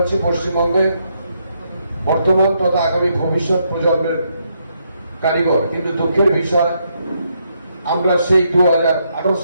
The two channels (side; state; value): both; inverted; correlation -0.77